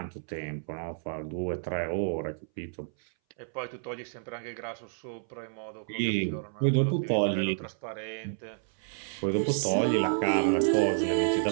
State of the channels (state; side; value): silent; left; 58 dB below the other